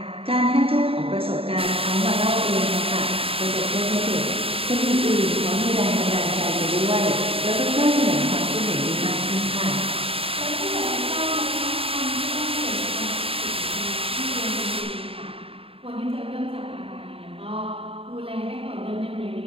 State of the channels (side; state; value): left; late; 0.27 ms